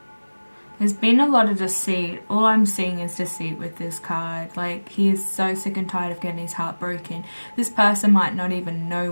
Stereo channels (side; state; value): both; inverted; correlation -1.00